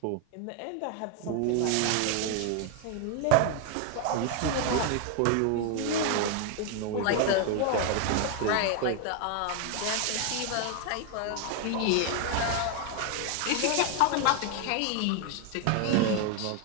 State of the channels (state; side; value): different; both; correlation 0.01